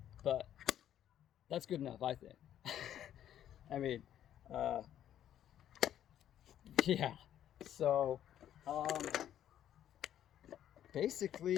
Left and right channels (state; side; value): quieter; right; 10.9 dB